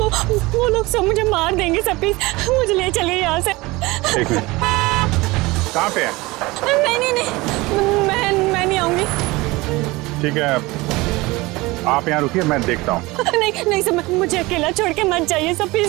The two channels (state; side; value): quieter; left; 21.7 dB